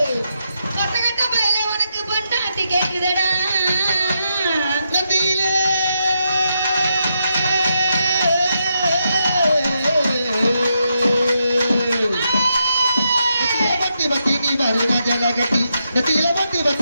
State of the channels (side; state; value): both; inverted; correlation -0.82